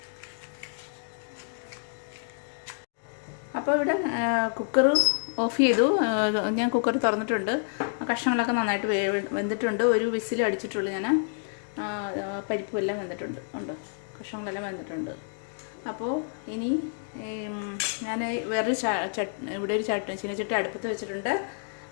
അപ്പോൾ ഇവിടെ കുക്കർ ഓഫ് ചെയ്തു. ഞാൻ കുക്കർ തുറന്നിട്ടുണ്ട്. കഷ്ണങ്ങളൊക്കെ നന്നായിട്ട് വെന്തിട്ടുണ്ട്. ഒരു വിസിൽ അടിച്ചിട്ടുള്ളൂ ഞാൻ. പരിപ്പും എല്ലാം വെന്തിട്ടുണ്ട്. ഉണ്ടോ, കഷ്ണങ്ങളെല്ലാം വെന്തിട്ടുണ്ട്. അപ്പോൾ ഇനി ഞാൻ വേറൊരു ഇവിടെ ഒരു ചീനച്ചട്ടി അടുപ്പത്ത് വെച്ചിട്ടുണ്ട്.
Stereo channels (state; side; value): silent; right; digital silence